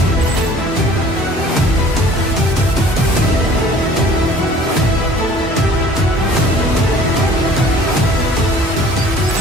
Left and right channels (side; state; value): both; normal; correlation 0.50